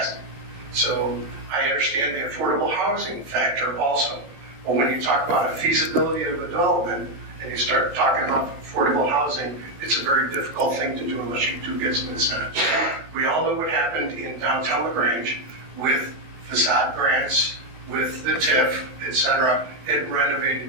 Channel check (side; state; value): left; late; 14 ms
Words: So I understand the affordable housing factor also. But when you talk about a feasibility of a development and you start talking about affordable housing, it's a very difficult thing to do unless you do get some incentives. We all know what happened in downtown LaGrange with facade grants, with the TIF, et cetera. It